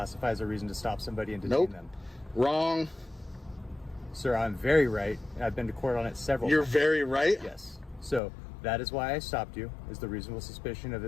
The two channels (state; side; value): drops out; right; at 8.2 s